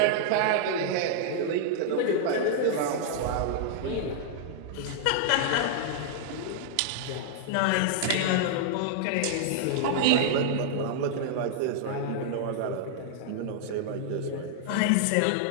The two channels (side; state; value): both; different; correlation -0.01